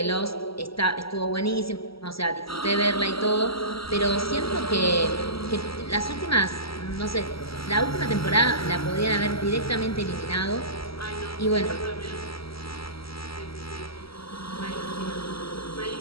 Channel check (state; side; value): late; right; 0.75 ms